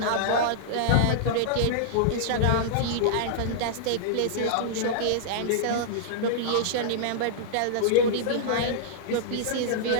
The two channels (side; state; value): both; different; correlation -0.02